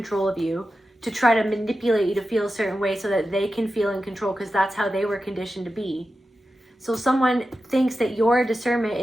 of you, to try to manipulate you to feel a certain way so that they can feel in control, because that's how they were conditioned to be. So someone thinks that your discernment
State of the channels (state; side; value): normal; both; correlation 0.92